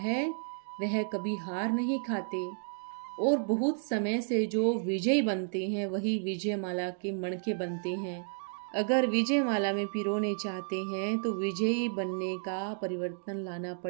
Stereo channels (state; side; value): silent; left; digital silence